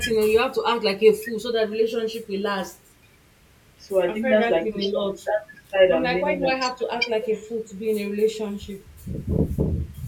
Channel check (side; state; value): both; identical; correlation 1.00